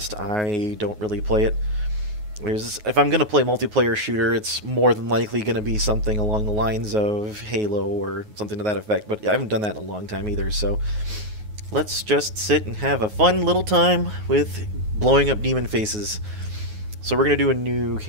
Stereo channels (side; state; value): left; late; 9.4 ms